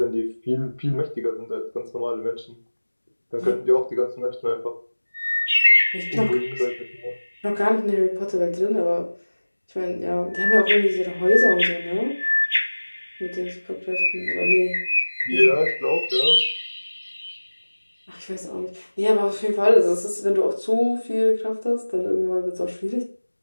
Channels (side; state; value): both; inverted; correlation -1.00